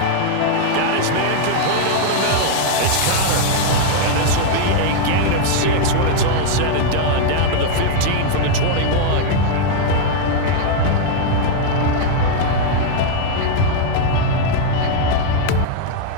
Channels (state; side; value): different; both; correlation 0.00